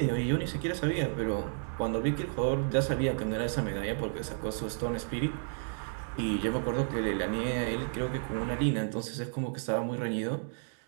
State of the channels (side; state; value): left; silent; digital silence